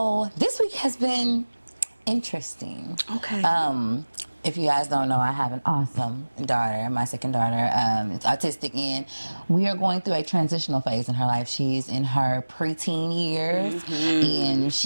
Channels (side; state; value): both; inverted; correlation -1.00